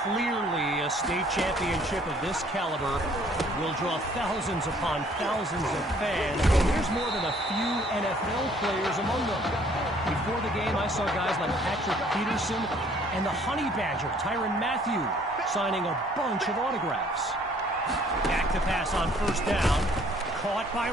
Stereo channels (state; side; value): normal; both; correlation 0.59